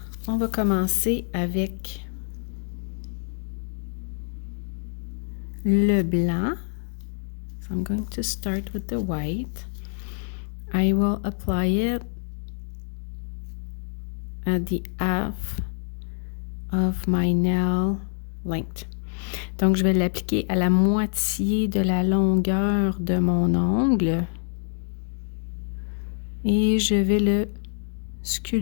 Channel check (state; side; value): silent; right; digital silence